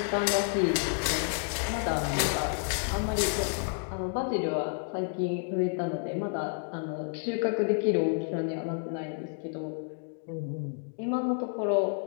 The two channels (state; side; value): silent; right; 58 dB below the other